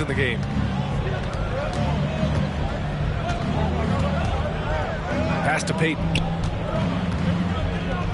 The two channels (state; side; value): identical; both; correlation 1.00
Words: in the game. Pass to Payton.